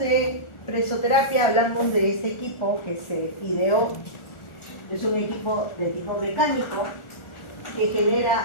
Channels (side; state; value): right; late; 1.4 ms